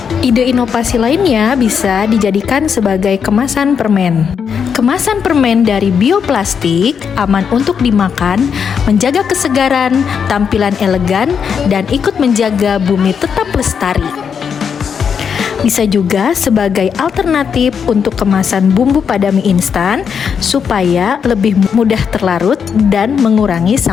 Ide inovasi lainnya bisa dijadikan sebagai kemasan permen. Kemasan permen dari bioplastik aman untuk dimakan, menjaga kesegaran, tampilan elegan, dan ikut menjaga bumi tetap lestari. Bisa juga sebagai alternatif untuk kemasan bumbu pada mie instan supaya lebih mudah terlarut dan mengurangi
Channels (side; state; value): right; quieter; 6.9 dB